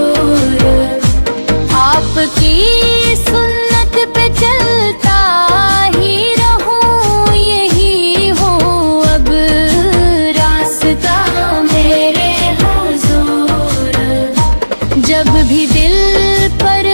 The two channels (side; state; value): both; inverted; correlation -1.00